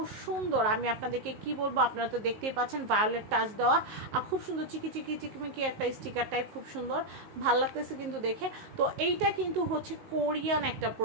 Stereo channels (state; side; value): late; left; 19 ms